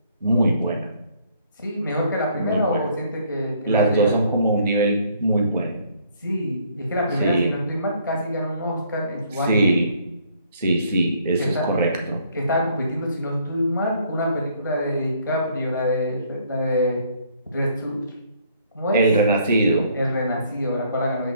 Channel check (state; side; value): inverted; both; correlation -0.64